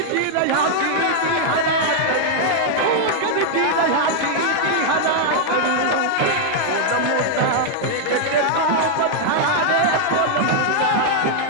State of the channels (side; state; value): both; different; correlation -0.01